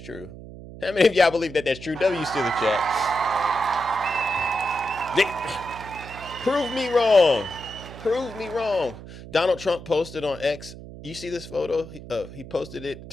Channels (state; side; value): noise; right; hum, 14 dB below the sound